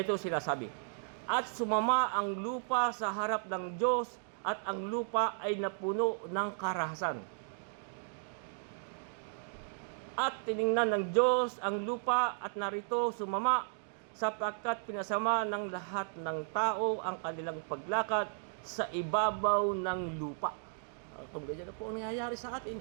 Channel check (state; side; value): silent; left; digital silence